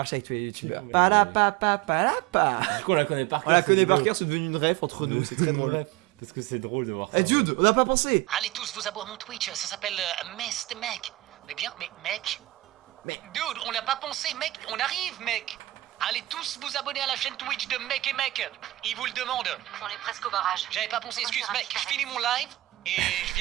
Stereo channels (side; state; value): left; quieter; 17.4 dB